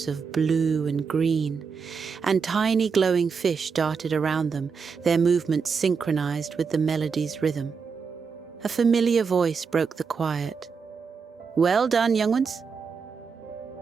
of blue and green, and tiny glowing fish darted around them, their movements synchronized with the melody's rhythm. A familiar voice broke the quiet. "Well done, young ones."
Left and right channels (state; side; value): quieter; left; 5.6 dB